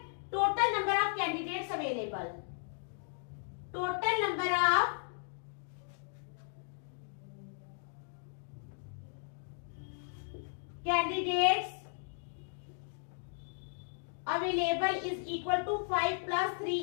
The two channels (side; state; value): right; silent; digital silence